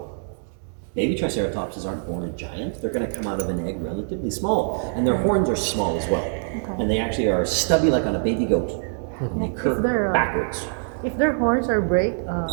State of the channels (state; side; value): silent; left; digital silence